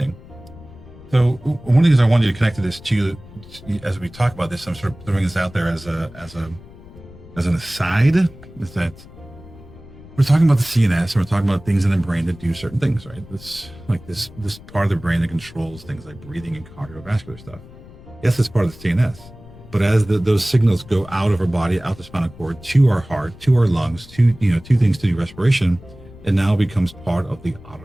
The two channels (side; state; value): left; noise; rumble, 19 dB below the sound